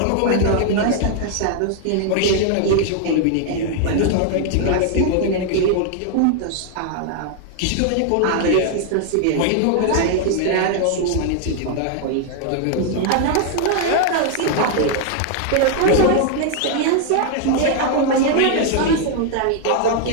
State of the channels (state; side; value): different; both; correlation 0.00